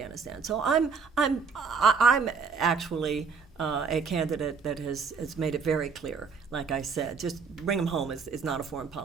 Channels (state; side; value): quieter; left; 5.3 dB